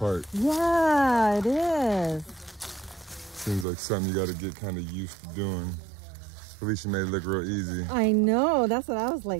Yeah, it is. Seems like something you got to get kind of used to doing. Felicia made it look real easy. I know. That's what I was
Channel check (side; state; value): left; drops out; at 3.7 s